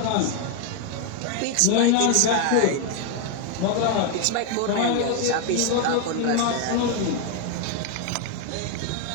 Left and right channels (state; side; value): different; both; correlation 0.00